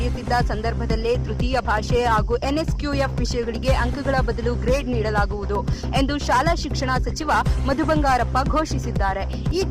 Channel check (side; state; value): both; identical; correlation 1.00